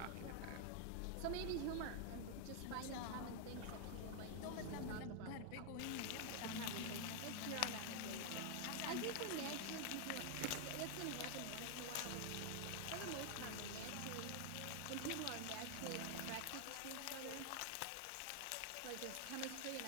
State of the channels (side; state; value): both; different; correlation 0.00